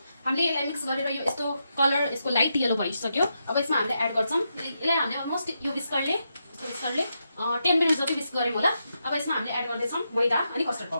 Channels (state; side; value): inverted; both; correlation -0.84